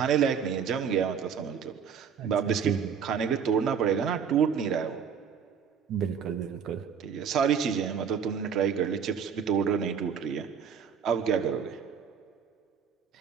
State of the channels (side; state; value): left; quieter; 7.1 dB